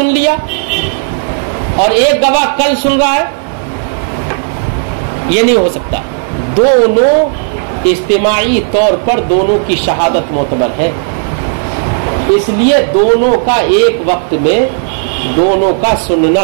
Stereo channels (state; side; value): silent; left; digital silence